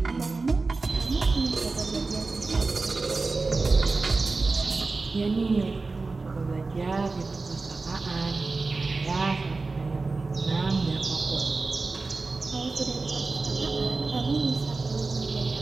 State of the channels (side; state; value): left; quieter; 3.8 dB